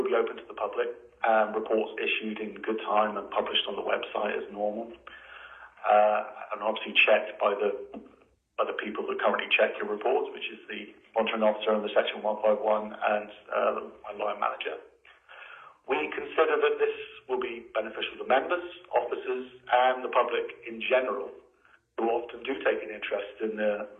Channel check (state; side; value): identical; both; correlation 1.00